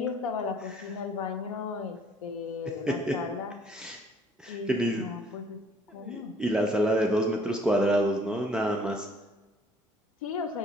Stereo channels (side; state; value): both; normal; correlation 0.59